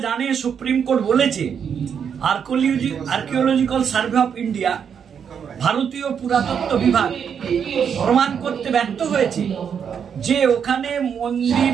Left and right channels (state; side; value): quieter; left; 7.5 dB